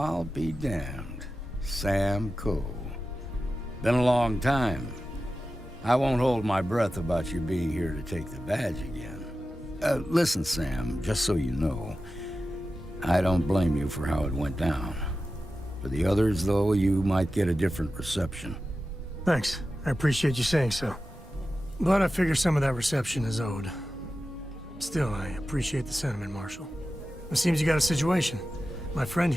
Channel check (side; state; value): both; normal; correlation 0.93